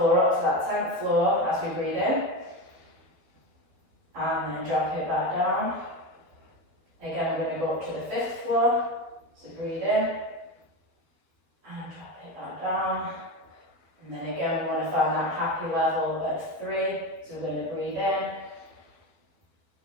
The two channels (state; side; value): late; left; 12 ms